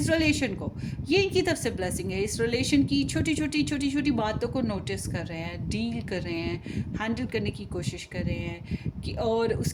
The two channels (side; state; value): both; identical; correlation 1.00